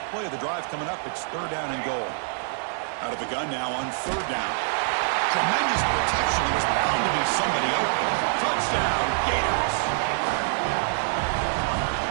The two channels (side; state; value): left; silent; digital silence